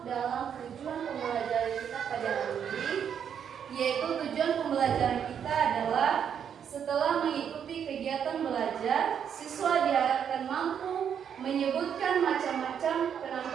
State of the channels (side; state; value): left; quieter; 8.2 dB